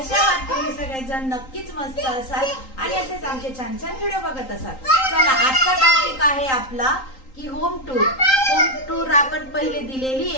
आहात तुम्ही सगळेजण? नक्कीच मस्त असाल आणि असेच आमचे छान छान व्हिडिओ बघत असाल. चला, आजचा टॉपिक आहे आपला की होम टूर. होम टूर आपण पहिले दिलेली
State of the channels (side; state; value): right; late; 3.8 ms